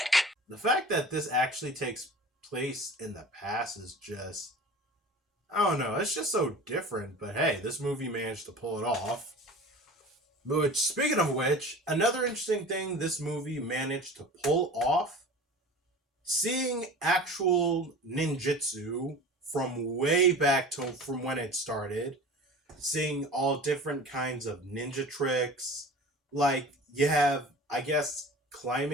The fact that this actually takes place in the past is just, I don't know, it's just so different. But hey, this movie managed to pull it off. Which, speaking of which, another interesting thing this movie managed to pull off, seeing actual ninjutsu from way back to from when it started, seeing all different kinds of ninja tricks, like you have, I guess,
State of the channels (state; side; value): normal; both; correlation 0.38